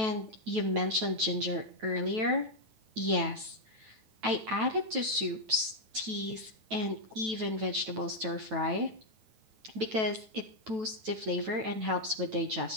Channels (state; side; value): late; left; 9.1 ms